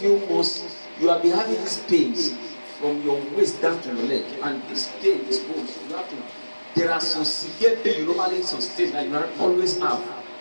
months, you have been having these pains from your waist down to your leg. And this pain, this bones, you have to. There are some severe pain you normally sustain that you always have.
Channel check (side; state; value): both; inverted; correlation -1.00